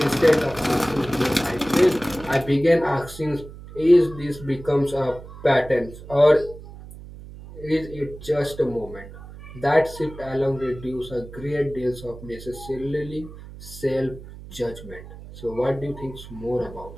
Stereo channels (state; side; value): noise; right; hum, 15 dB below the sound